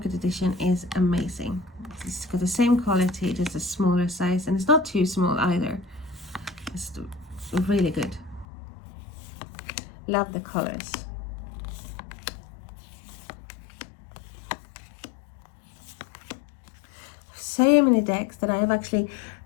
edition is amazing. It's got the same quality, just a smaller size, and it's not too small either. It's really good. Love the colors. So many decks that I have actually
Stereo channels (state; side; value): drops out; right; at 8.5 s